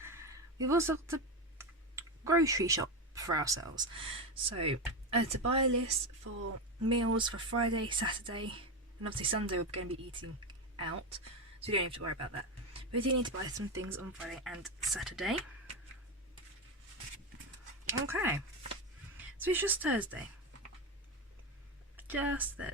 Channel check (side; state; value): both; normal; correlation 0.14